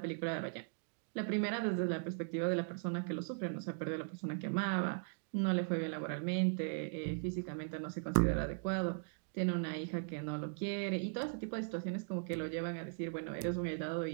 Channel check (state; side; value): silent; left; digital silence